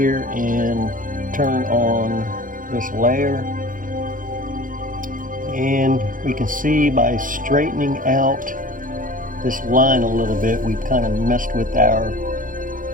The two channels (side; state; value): left; late; 0.39 ms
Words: and turn on this layer. And we can see by straightening out this line a little bit, we've kind of messed with our